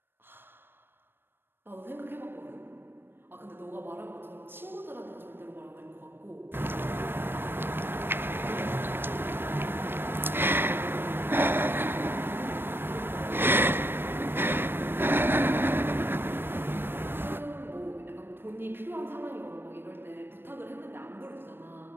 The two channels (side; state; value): left; late; 0.10 ms